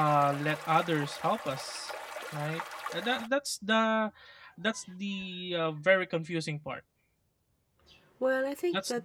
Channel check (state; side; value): identical; both; correlation 1.00